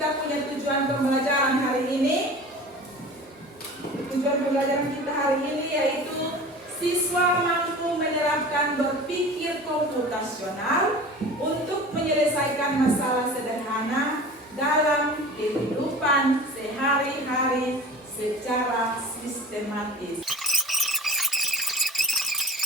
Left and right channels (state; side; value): normal; both; correlation 0.38